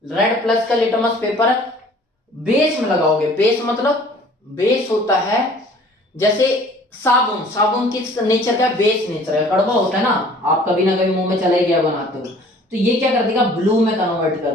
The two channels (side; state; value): both; normal; correlation 0.51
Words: रेड प्लस का लिटमस पेपर बेस में लगाओगे। बेस मतलब, बेस होता है जैसे साबुन, साबुन किस नेचर का? बेस नेचर है, कड़वा होता है ना, आप कभी ना कभी मुंह में चला ही गया बनाते हो, तो ये क्या कर देगा? ब्लू में कन्वर्ट